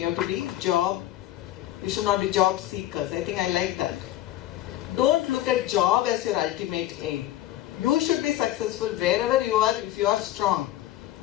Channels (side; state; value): right; quieter; 13.9 dB